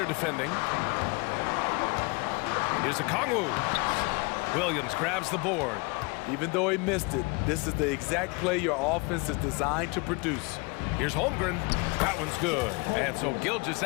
defending. Here's Okongwu. Williams grabs the board. Even though he missed it, this is the exact play your offense is designed to produce. Here's Holmgren. That one's good. And so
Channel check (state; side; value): quieter; right; 29.0 dB